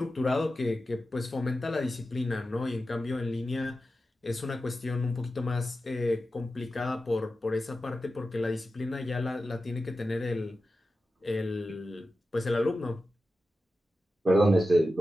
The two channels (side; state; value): both; normal; correlation 0.92